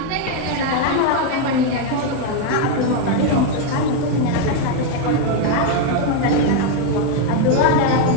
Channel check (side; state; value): both; different; correlation 0.01